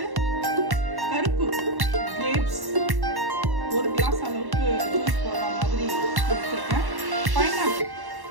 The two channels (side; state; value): left; late; 1.1 ms